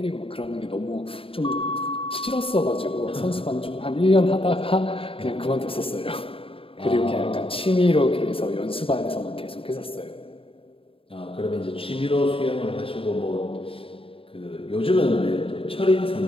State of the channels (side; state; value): right; late; 0.27 ms